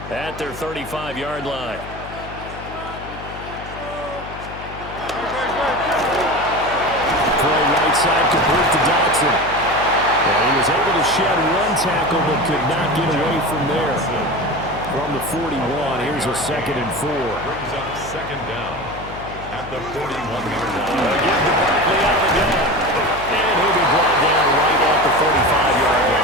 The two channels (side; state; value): left; noise; hum, 13 dB below the sound